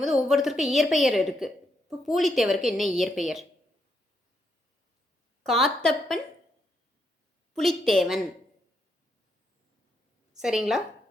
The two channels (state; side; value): normal; both; correlation 0.78